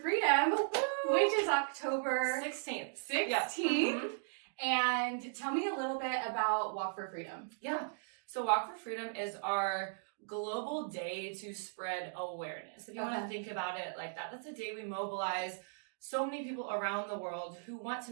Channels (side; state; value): left; silent; digital silence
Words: which is October 16th. Yeah. And tell me a little bit about Walk for Freedom. Yeah. So Walk for Freedom is our global day to spread awareness. If you want to think about it like that, that's a day we mobilize so many people around the world who want to